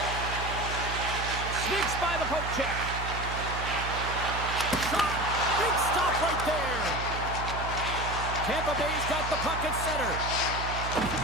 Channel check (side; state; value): right; noise; hum, 6 dB below the sound